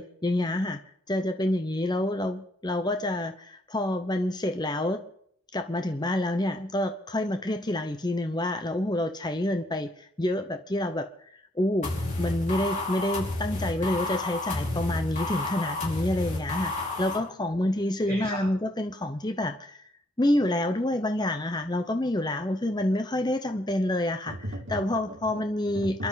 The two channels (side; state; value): both; normal; correlation 0.70